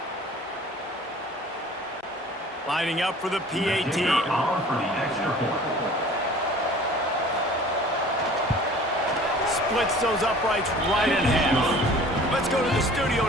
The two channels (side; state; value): both; normal; correlation 0.47